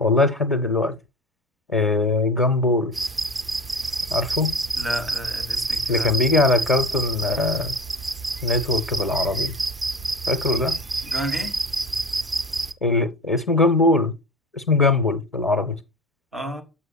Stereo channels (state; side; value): normal; both; correlation 0.32